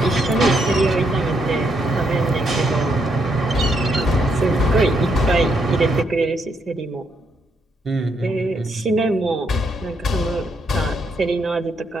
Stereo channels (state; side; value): normal; both; correlation 0.76